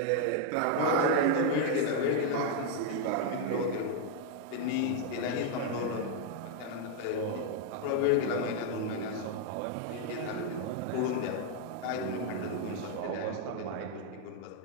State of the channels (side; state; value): both; different; correlation 0.00